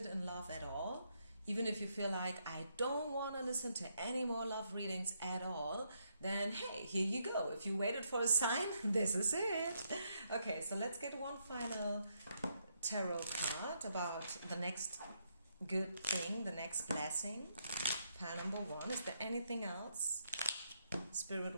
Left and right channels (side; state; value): both; inverted; correlation -0.77